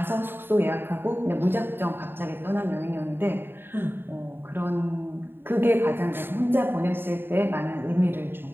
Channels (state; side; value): late; left; 0.10 ms